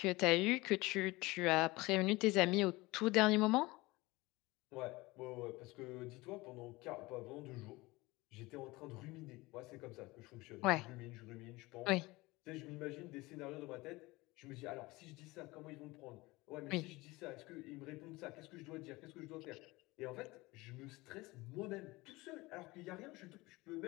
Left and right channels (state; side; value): quieter; right; 21.6 dB